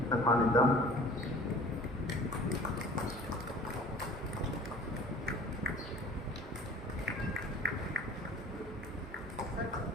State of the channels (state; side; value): normal; both; correlation 0.46